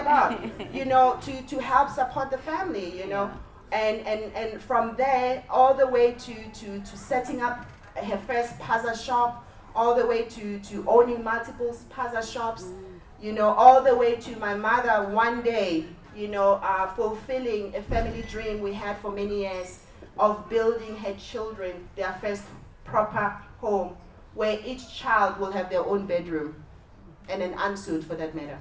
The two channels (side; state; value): both; identical; correlation 1.00